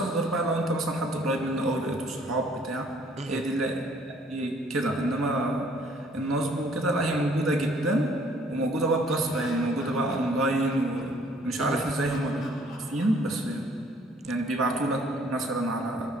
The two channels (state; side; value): normal; both; correlation 0.60